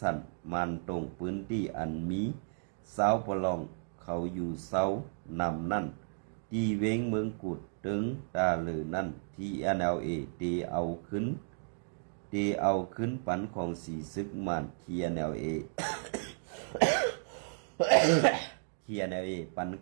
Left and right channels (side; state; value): left; silent; digital silence